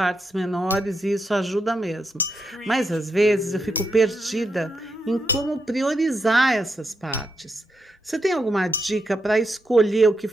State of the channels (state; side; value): normal; both; correlation 0.83